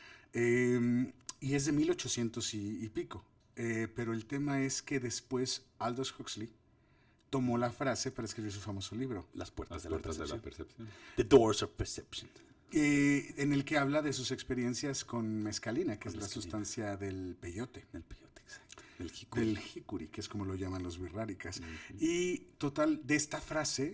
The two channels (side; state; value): both; identical; correlation 1.00